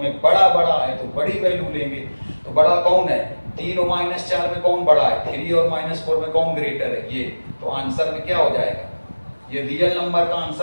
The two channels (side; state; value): both; inverted; correlation -1.00